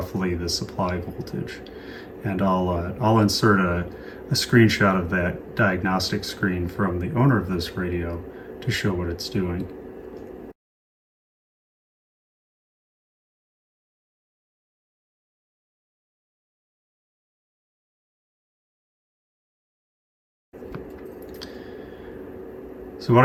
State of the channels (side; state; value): both; identical; correlation 1.00